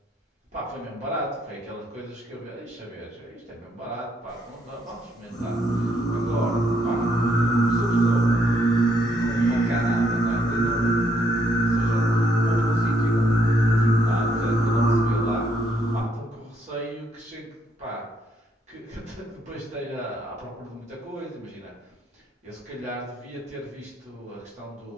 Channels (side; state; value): both; normal; correlation 0.72